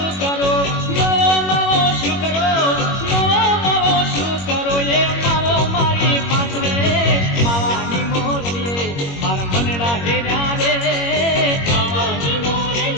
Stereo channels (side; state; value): right; late; 21 ms